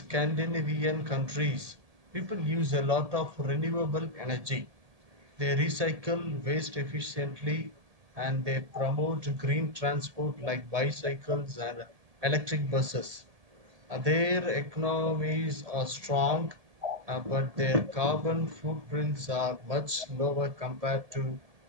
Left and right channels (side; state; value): left; late; 1.7 ms